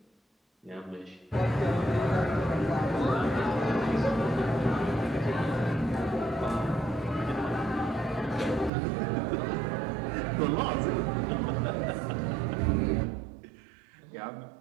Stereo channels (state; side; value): drops out; left; at 8.7 s